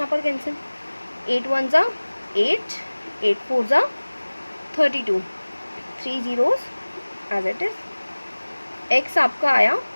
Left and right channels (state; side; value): inverted; both; correlation -1.00